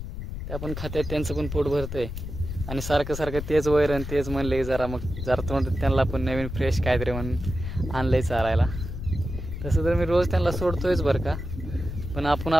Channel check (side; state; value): left; noise; rumble, 7 dB below the sound